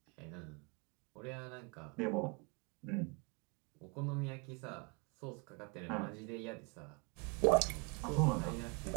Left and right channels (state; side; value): quieter; left; 32.2 dB